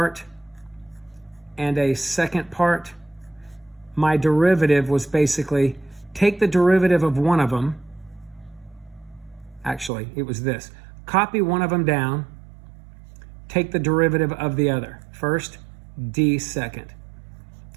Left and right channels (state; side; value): drops out; left; at 9.9 s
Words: and a second part, my derivative was basically take the derivative of one of them. Actually, it was this. Copy one of them down, take the derivative of the other. First, d second.